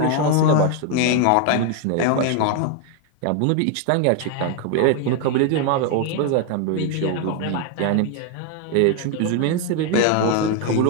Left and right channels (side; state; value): both; different; correlation 0.01